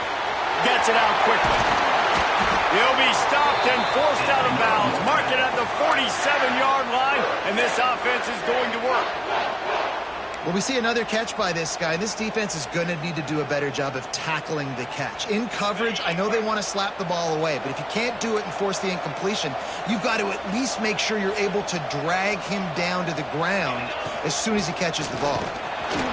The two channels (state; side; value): identical; both; correlation 1.00